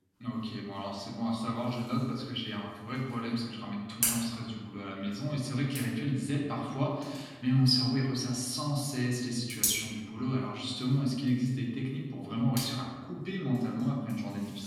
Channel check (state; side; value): identical; both; correlation 1.00